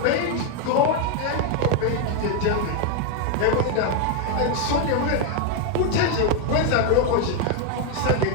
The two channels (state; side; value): different; both; correlation 0.01